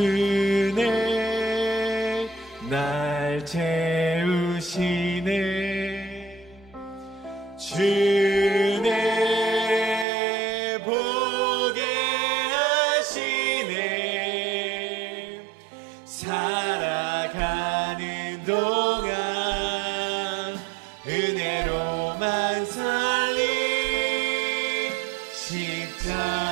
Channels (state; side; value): drops out; left; at 10.1 s